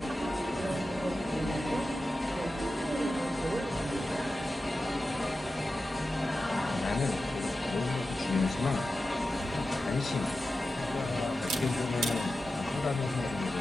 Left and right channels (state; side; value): normal; both; correlation 0.93